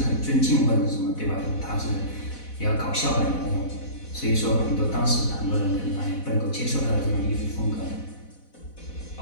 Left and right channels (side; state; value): right; late; 4.1 ms